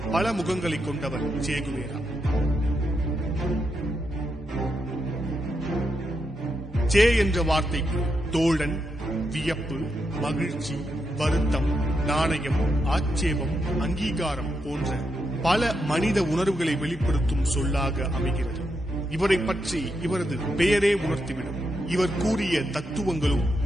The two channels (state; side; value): normal; both; correlation 0.83